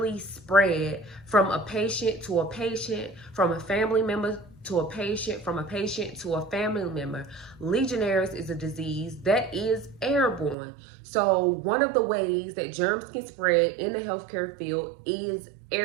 spread from a patient to a patient, from a family member to a patient, from a patient to a family member. Legionnaires is a disease that is airborne. So one of the ways that germs can spread in the healthcare field is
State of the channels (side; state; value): left; drops out; at 10.6 s